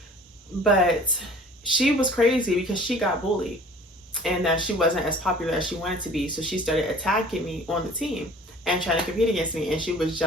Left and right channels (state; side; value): normal; both; correlation 0.48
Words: But she was crazy because she got bullied, and that she wasn't as popular as she wanted to be. So she started attacking me on the team and trying to compete against me. And she was